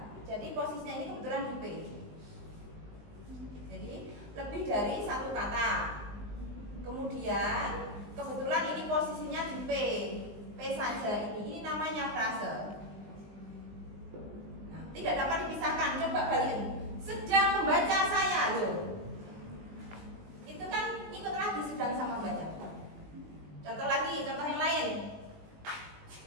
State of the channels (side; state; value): left; late; 19 ms